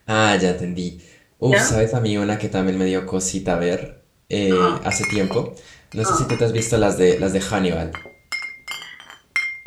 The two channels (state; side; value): identical; both; correlation 1.00